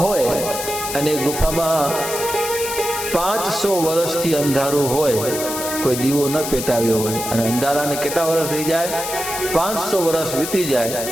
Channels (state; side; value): noise; left; hiss, 6 dB below the sound